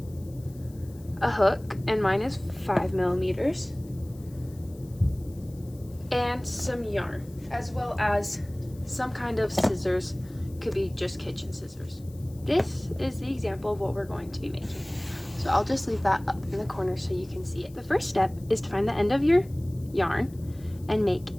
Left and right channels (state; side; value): noise; left; hiss, 26 dB below the sound